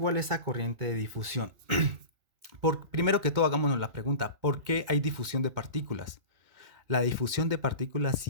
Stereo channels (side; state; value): left; late; 2.2 ms